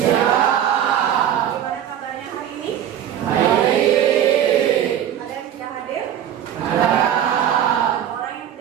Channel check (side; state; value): left; quieter; 10.3 dB